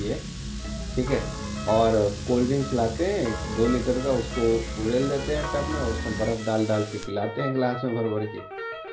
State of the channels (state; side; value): identical; both; correlation 1.00